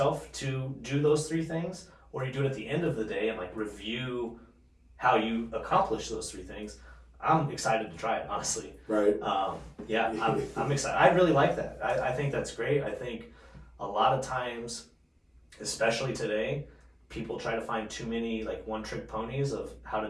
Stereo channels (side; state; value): both; identical; correlation 1.00